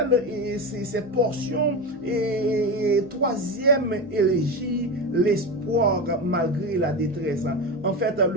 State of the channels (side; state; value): right; noise; hum, 26 dB below the sound